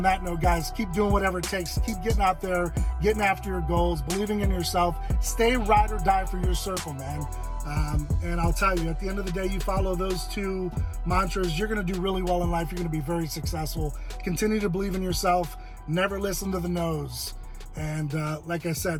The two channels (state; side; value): identical; both; correlation 1.00